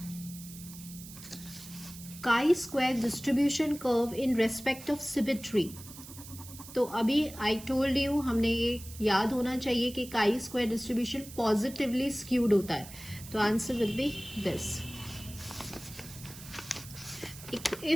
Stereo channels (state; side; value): noise; right; hiss, 15 dB below the sound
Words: काई square distribution curve in respect of symmetry. तो अभी आई टोल्ड यू, हमने ये याद होना चाहिए कि काई स्क्वायर डिस्ट्रीब्यूशन पॉजिटिवली स्क्यूड होता है। तो answer will be this.